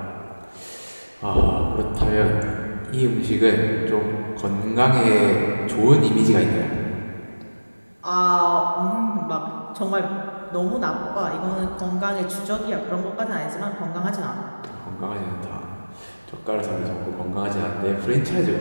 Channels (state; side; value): inverted; both; correlation -1.00